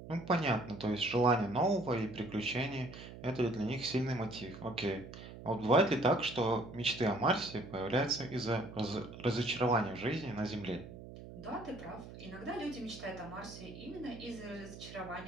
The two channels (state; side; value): noise; right; hum, 14 dB below the sound